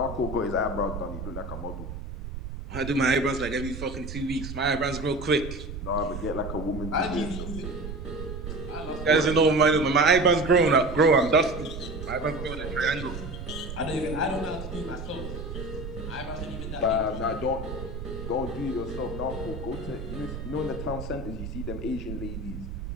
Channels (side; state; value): right; noise; rumble, 8 dB below the sound